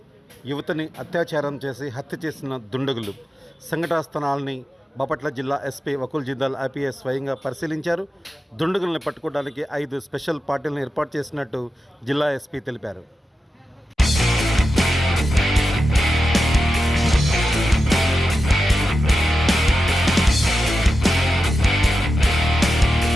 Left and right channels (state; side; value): normal; both; correlation 0.91